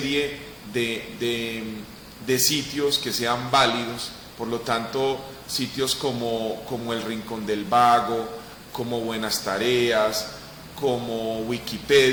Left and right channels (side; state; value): both; identical; correlation 1.00